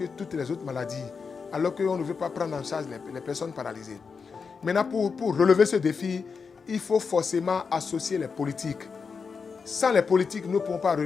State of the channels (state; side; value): quieter; right; 5.4 dB